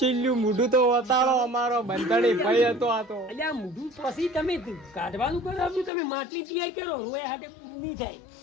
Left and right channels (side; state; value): right; drops out; at 5.9 s